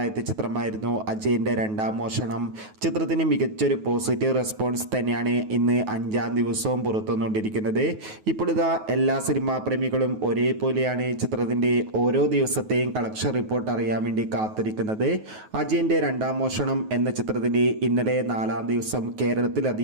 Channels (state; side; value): late; left; 9.3 ms